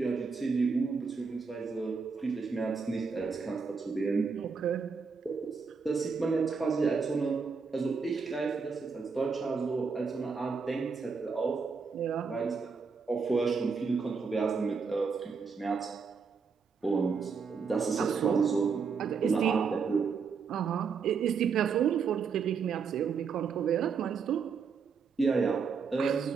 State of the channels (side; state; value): left; quieter; 5.4 dB